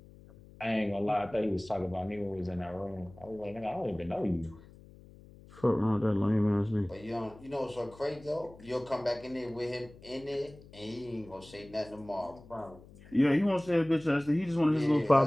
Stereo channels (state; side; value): noise; left; hum, 21 dB below the sound